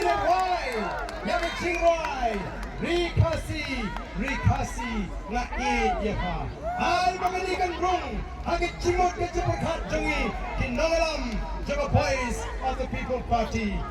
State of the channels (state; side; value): identical; both; correlation 1.00